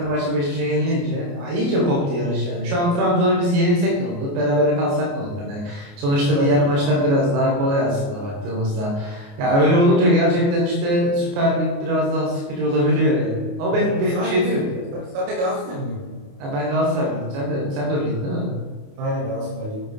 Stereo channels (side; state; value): left; late; 29 ms